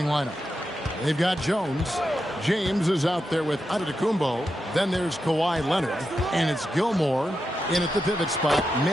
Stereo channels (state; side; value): normal; both; correlation 0.87